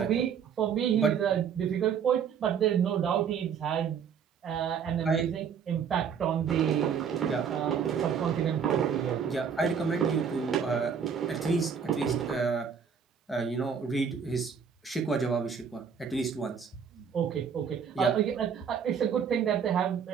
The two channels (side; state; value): left; quieter; 7.1 dB